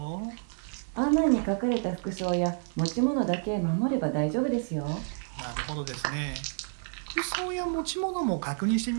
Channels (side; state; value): left; silent; 58 dB below the other